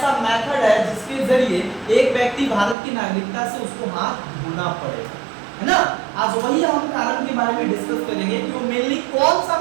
मेथड है जिसके जरिए एक व्यक्ति भारत की नागरिकता से उसको हाथ धोना पड़ेगा, है ना। आज वही हम कारण के बारे में डिस्कस करेंगे कि वो मेनली कौन सा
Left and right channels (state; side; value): drops out; left; at 2.8 s